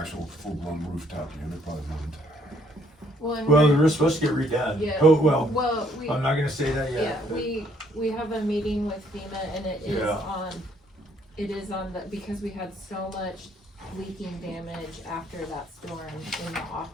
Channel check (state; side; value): normal; both; correlation 0.67